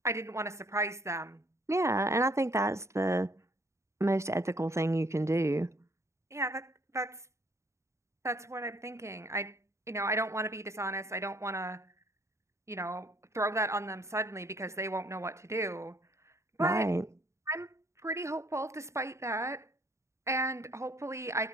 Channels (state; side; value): late; left; 0.14 ms